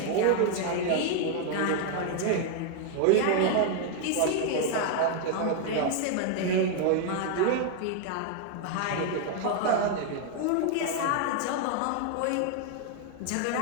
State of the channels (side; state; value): both; different; correlation 0.00